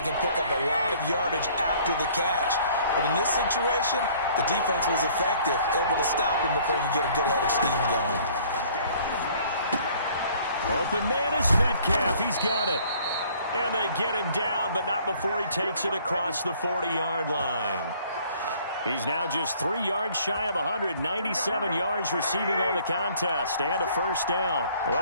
can pick up a lot of yardage after the catch. But in this situation, the defense was effective, able to stop him before he could get a good head of steam going. Open man is Metcalf. He's got it. And they get him down, but not before he takes it across the 40-yard line. He's now just 3 yards shy of 197 yards receiving on the contest and a first down.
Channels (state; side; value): inverted; both; correlation -0.57